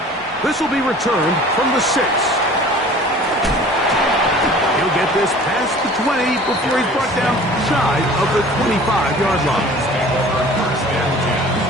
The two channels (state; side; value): normal; both; correlation 0.46